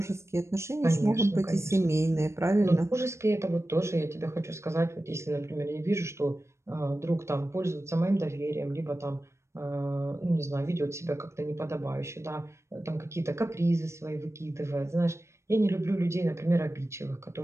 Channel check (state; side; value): late; left; 0.13 ms